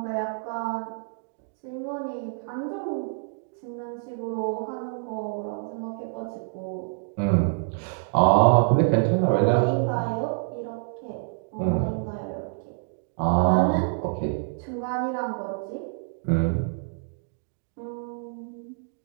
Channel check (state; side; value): silent; left; digital silence